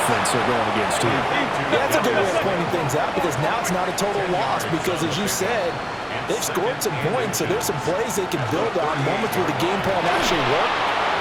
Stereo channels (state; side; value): identical; both; correlation 1.00